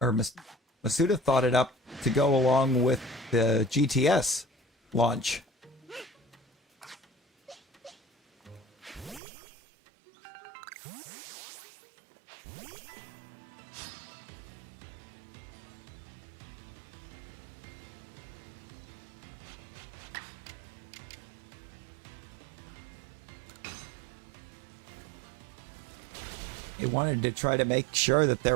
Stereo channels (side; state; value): left; drops out; at 9.2 s